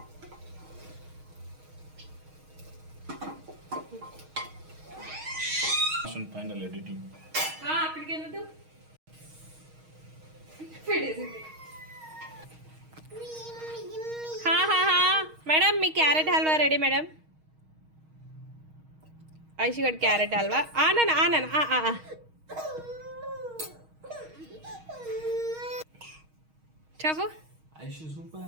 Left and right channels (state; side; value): late; left; 6.4 ms